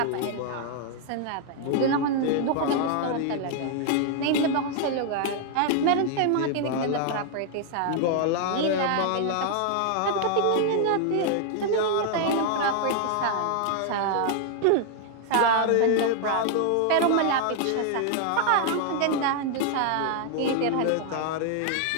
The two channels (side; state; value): both; different; correlation 0.00